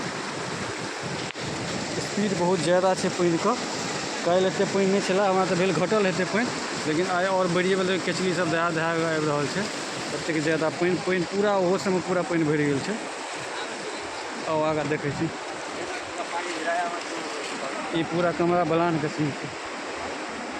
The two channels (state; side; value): identical; both; correlation 1.00